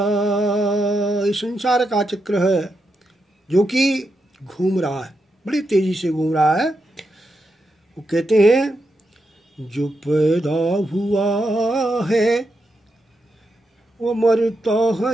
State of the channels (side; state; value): both; normal; correlation 0.85